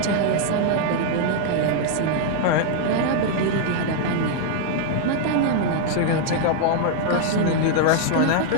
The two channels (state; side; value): different; both; correlation -0.01